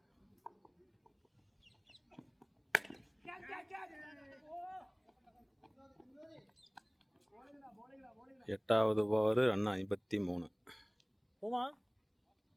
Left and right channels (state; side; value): identical; both; correlation 1.00